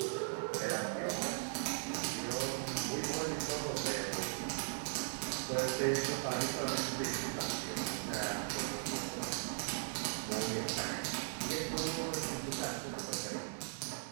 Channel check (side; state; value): left; silent; digital silence